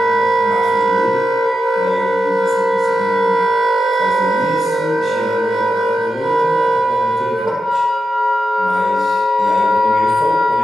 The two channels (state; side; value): normal; both; correlation 0.89